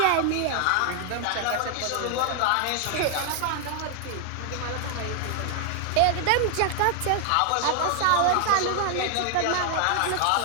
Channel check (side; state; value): both; different; correlation 0.00